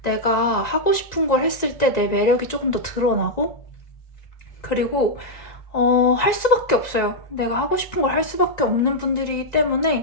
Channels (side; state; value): right; late; 1.9 ms